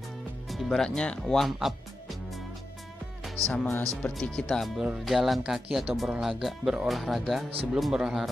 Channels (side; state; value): both; normal; correlation 0.90